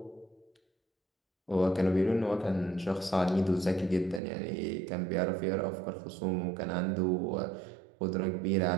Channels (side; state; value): left; drops out; at 4.2 s